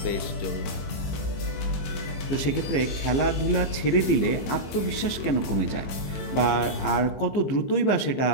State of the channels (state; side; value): late; right; 15 ms